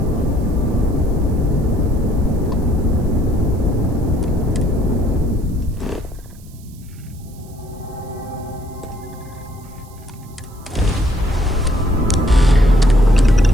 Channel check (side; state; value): right; noise; hiss, 26 dB below the sound